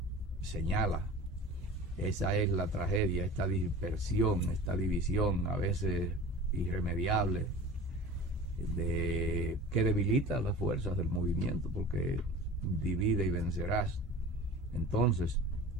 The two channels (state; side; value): normal; both; correlation 0.38